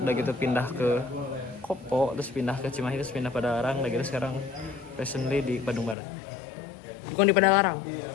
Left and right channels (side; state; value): right; drops out; at 6.0 s